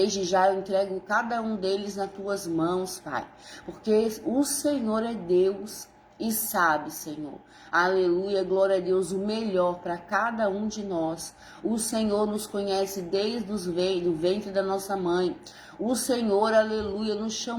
já eu entrego cada um deles nas tuas mãos, Pai. Porque o Senhor é Deus e sabe, Senhor. Aleluia, glória a Deus, o melhor para cada um de nós. O Senhor nos conhece desde o ventre da nossa mãe. O Senhor, aleluia, nos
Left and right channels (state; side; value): identical; both; correlation 1.00